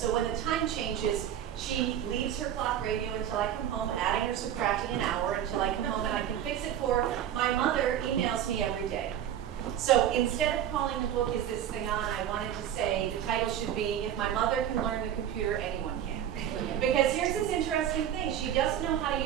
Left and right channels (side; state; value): left; quieter; 10.4 dB